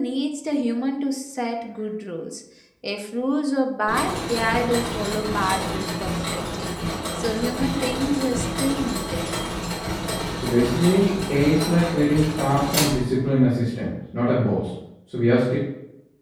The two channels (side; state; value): both; identical; correlation 1.00